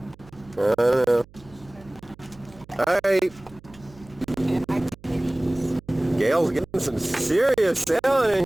I don't know. All right. Gail's getting some serious sailing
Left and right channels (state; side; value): noise; right; hum, 24 dB below the sound